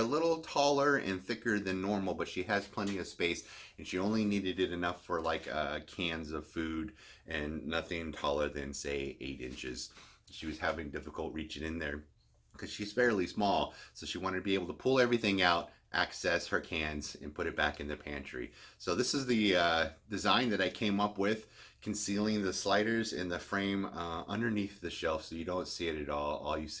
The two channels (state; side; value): identical; both; correlation 1.00